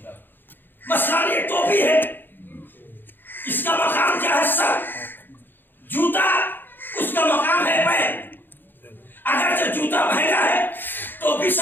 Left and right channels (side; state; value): right; late; 0.095 ms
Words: مثلاً یہ ٹوپی ہے، اس کا مقام کیا ہے؟ سر. جوتا اس کا مقام ہے پیر. اگرچہ جوتا مہنگا ہے، ٹوپی